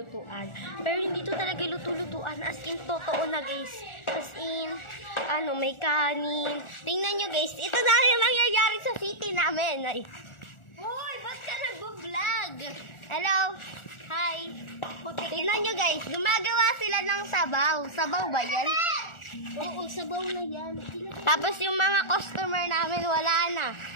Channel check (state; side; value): late; right; 1.4 ms